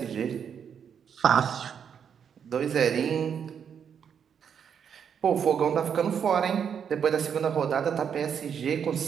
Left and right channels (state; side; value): quieter; left; 7.7 dB